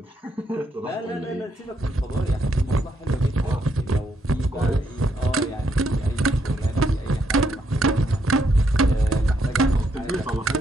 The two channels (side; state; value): both; normal; correlation 0.75